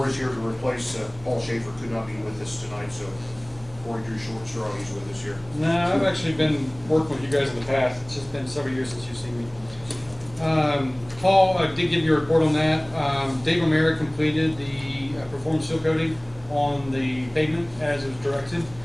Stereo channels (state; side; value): noise; right; hum, 22 dB below the sound